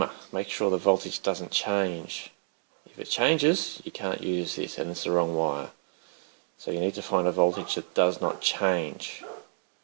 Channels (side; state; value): left; silent; digital silence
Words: make sure the voltage doesn't change. If it changes, you can't use this and it's the wrong wire. So you need to find a voltage that does not change.